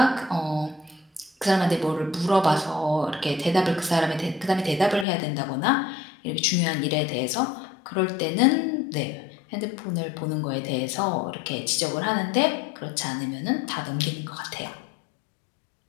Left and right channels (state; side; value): drops out; right; at 5.1 s